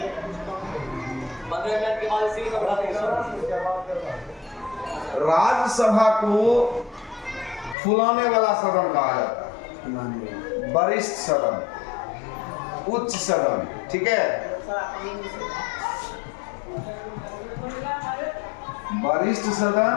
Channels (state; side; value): drops out; right; at 7.8 s